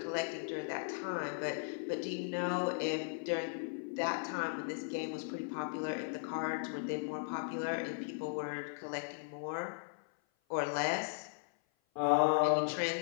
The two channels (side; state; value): right; silent; 53 dB below the other